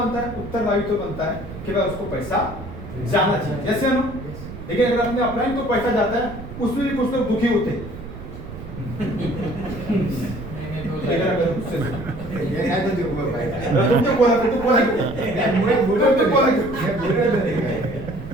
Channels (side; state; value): right; noise; rumble, 12 dB below the sound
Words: है? उत्तरदायित्व बनता है कि भाई उसको पैसा जाना चाहिए। जैसे ना? लेकिन अगर अपने अपलाइन को पैसा जाता है, उसमें भी कुछ लोग दुखी होते हैं।